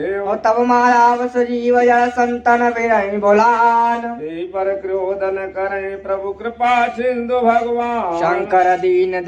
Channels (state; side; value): identical; both; correlation 1.00